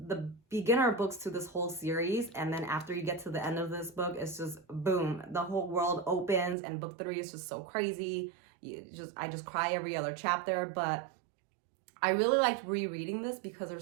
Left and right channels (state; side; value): drops out; left; at 6.6 s